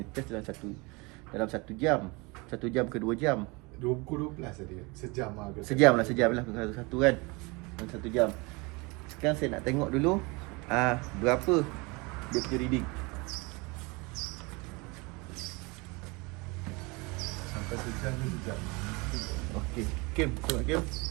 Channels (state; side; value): quieter; left; 26.8 dB